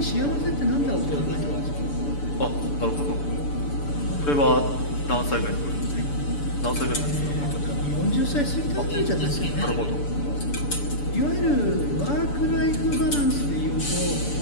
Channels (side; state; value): right; late; 6.9 ms